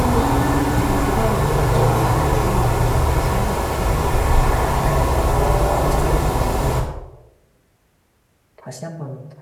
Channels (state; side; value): identical; both; correlation 1.00